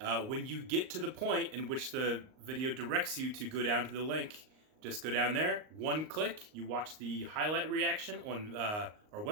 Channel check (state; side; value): late; left; 38 ms